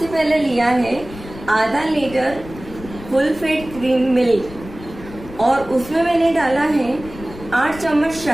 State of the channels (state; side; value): noise; left; rumble, 15 dB below the sound